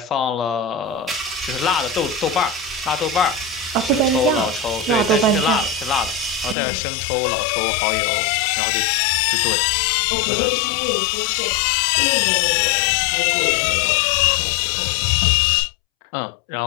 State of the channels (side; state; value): right; drops out; at 6.6 s